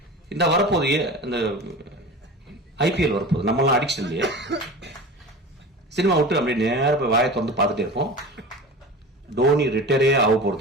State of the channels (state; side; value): normal; both; correlation 0.34